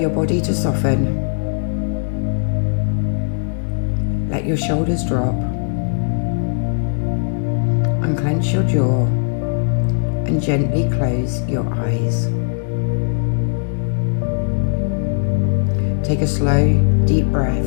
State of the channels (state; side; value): silent; right; 65 dB below the other